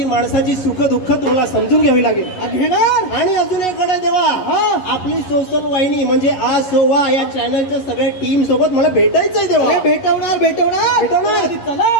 माणसाची सुख दुःख तुम्हाला समजून घ्यावी लागेल. घेणार. आणि अजून एक कडे देवा आपली सोशल वाहिनी म्हणजे आ सोवा या चॅनलच्या सगळ्या टीम सोबत मला भेटायचंय देवा. भेटवणार भेटवणार भेटवणार. चला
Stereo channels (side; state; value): right; late; 11 ms